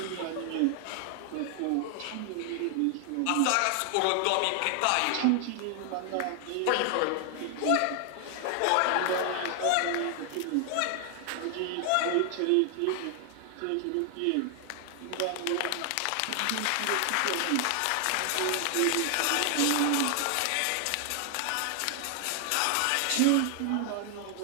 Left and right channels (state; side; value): different; both; correlation 0.00